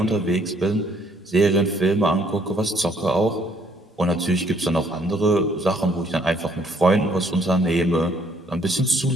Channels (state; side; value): normal; both; correlation 0.64